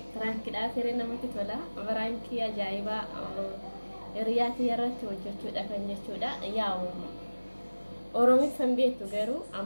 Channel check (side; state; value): both; inverted; correlation -1.00